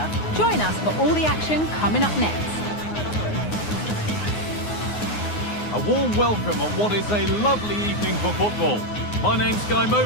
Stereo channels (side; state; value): right; late; 9.6 ms